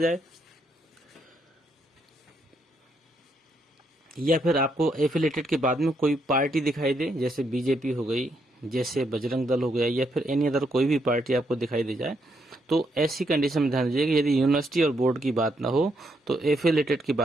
या फिर आपको एफिलेटेड के बाद में कोई पार्टी दिखाई दे, जैसे बीजेपी हो गई, जैसे बजरंग दल हो गया, या फिर एनी अदर कोई भी पार्टी आपको दिखाई दे जाए, तो ऐसी कंडीशन में ध्यान दीजिएगा यदि यूनिवर्सिटी और बोर्ड की बात ना हो तो एफिलेटेड के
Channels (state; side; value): normal; both; correlation 0.76